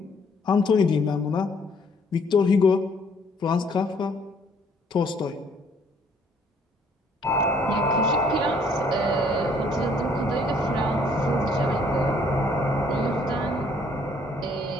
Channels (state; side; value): normal; both; correlation 0.63